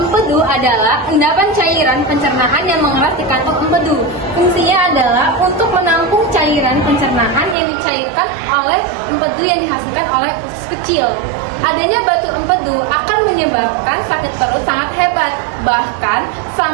adalah endapan cairan pencernaan yang mengeras di kantong empedu. Fungsinya adalah untuk menampung cairan pencernaan yang dicairkan oleh empedu yang dihasilkan oleh usus kecil. Adanya batu empedu akan menyebabkan sakit perut sangat hebat, bahkan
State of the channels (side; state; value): left; drops out; at 7.6 s